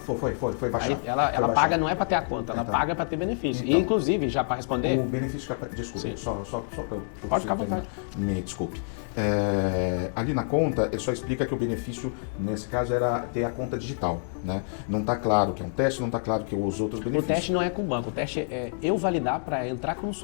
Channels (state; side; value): silent; right; digital silence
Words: baixando, ela paga não é para ter a conta, ela paga para ter benefício. E, inclusive, já para responder... Só para pode ficar à vontade. Me desculpe. Ali na conta, ele só explica que o benefício, nesse caso, era ter a conta digital. Né? Não está claro que é um teste, não está claro que os outros benefícios... O teste não é com o banco, o teste é eu validar para entrar como